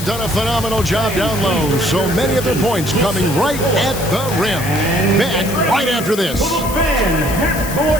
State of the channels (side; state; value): left; noise; hiss, 10 dB below the sound